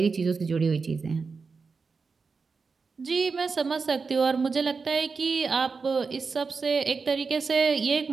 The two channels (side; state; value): left; quieter; 4.8 dB